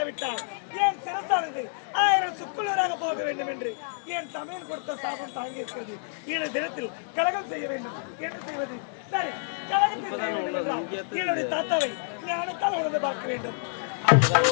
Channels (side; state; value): right; silent; 59 dB below the other